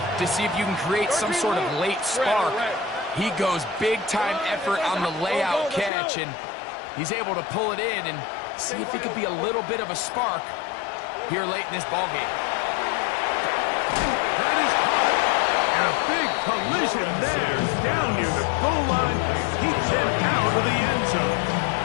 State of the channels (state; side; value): drops out; right; at 5.9 s